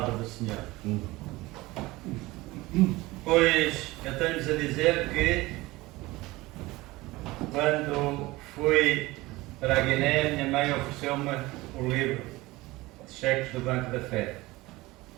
do Senhor. Pois eu tenho-vos a dizer que quando fui para a Guiné, minha mãe ofereceu-me o livro de cheques do Banco da Fé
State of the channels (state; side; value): quieter; left; 20.2 dB